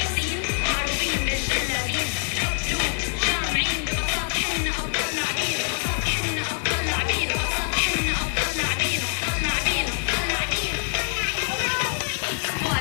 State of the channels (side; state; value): right; silent; digital silence